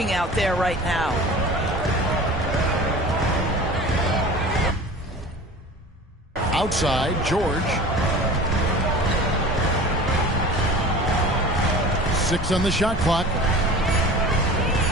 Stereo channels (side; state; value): both; normal; correlation 0.38